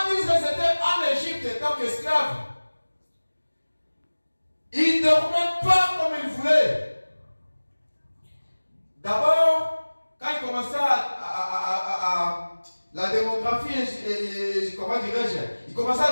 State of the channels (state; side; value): inverted; both; correlation -1.00